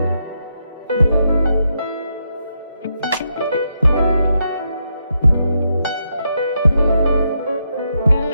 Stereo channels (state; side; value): inverted; both; correlation -0.81